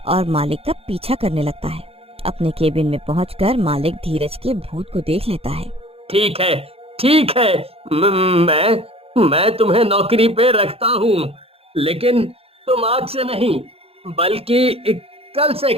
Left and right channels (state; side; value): late; left; 0.28 ms